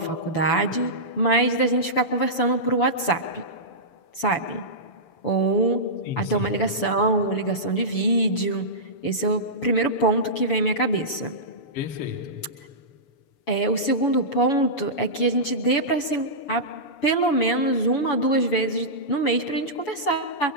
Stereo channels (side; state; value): right; late; 7.0 ms